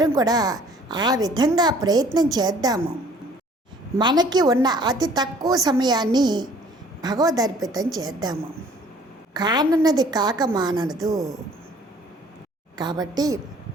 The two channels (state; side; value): normal; both; correlation 0.55